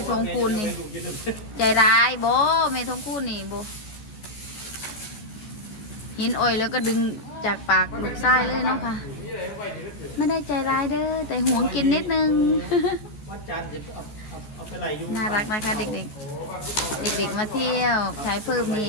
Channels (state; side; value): late; right; 14 ms